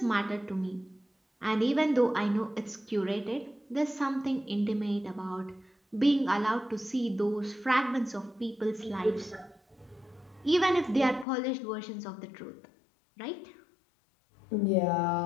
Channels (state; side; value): drops out; right; at 11.2 s